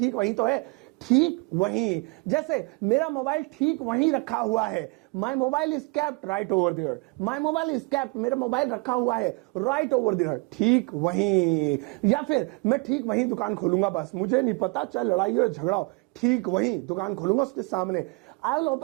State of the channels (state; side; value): quieter; left; 28.8 dB